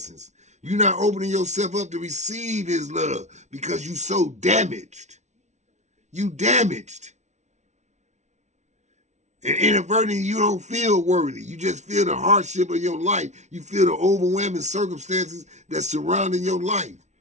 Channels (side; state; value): left; late; 0.33 ms